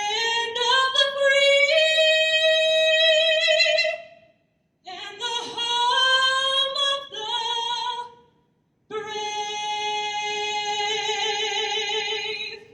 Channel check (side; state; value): both; identical; correlation 1.00